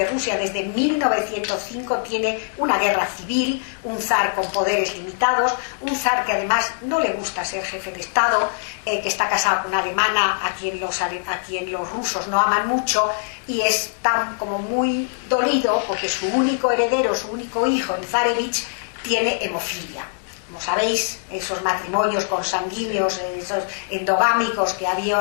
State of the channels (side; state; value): right; silent; digital silence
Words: Rusia desde 1905 tiene una guerra civil, un zar con poderes limitados, un zar que además no le gusta ser jefe de Estado, que está casado con una alemana a quien los rusos no aman mucho, y es tan como muy dolido porque su único heredero, su único hijo, el zarevich, tiene hemofilia. Como sabéis, esos matrimonios consanguíneos, esos endogámicos que